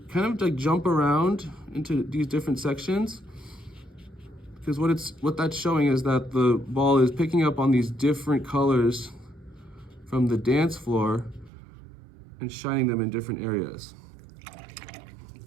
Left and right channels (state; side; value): drops out; left; at 11.5 s